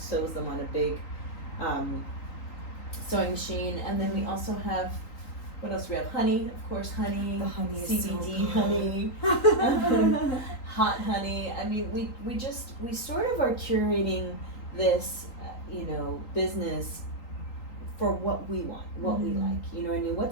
them on a big sewing machine. And then we also have, what else? We have honey, of course, honey. The honey is CBD so honey, hot honey. I mean, we sort of are curating this, you know, business for what we want, what we like. You know what I mean?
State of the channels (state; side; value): late; right; 3.8 ms